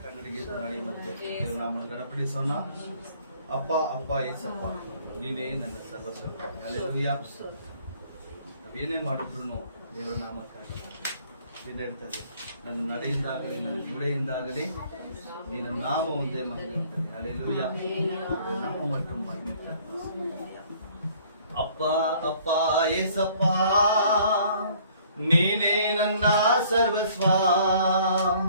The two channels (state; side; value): inverted; both; correlation -0.58